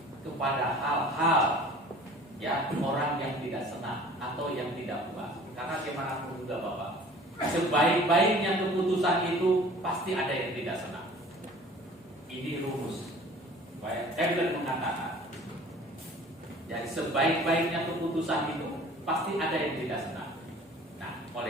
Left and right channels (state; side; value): normal; both; correlation 0.47